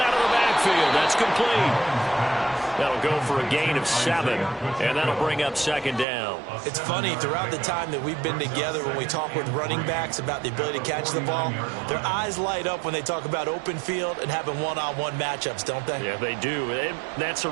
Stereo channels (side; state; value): left; drops out; at 6.1 s